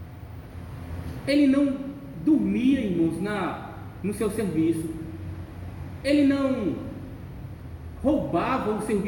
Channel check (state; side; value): identical; both; correlation 1.00